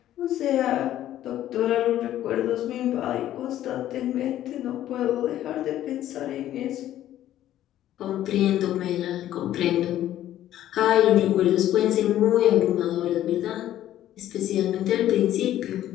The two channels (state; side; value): quieter; right; 12.6 dB